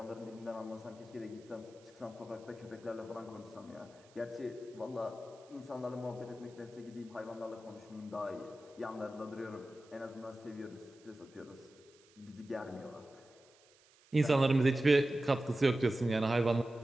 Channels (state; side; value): noise; right; hiss, 28 dB below the sound